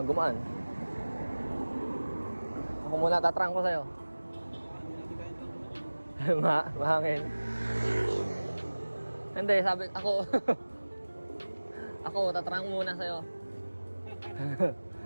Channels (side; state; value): both; inverted; correlation -1.00